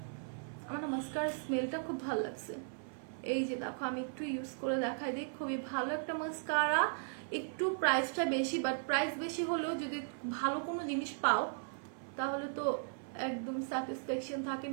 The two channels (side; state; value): left; silent; 53 dB below the other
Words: আমার মাস্কারার স্মেলটা খুব ভালো লাগছে। এই যে দেখো, আমি একটু ইউজ করে দেখাই দিই। খুবই ভালো একটা মাস্কারা। একটু প্রাইসটা বেশি, বাট প্রাইস বেশি হলেও যদি ভালো কোনো জিনিস পাও তাহলে তো একদম স্যাটিসফ্যাকশন থাকে